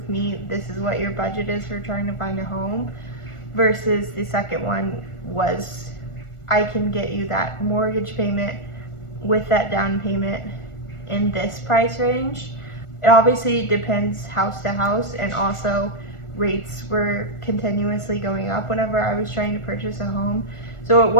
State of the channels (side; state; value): right; late; 1.4 ms